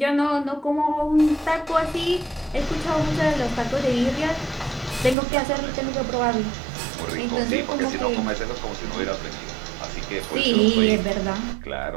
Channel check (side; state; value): left; drops out; at 5.2 s